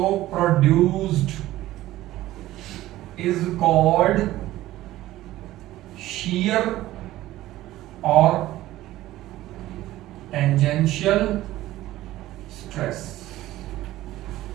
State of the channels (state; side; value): quieter; left; 15.5 dB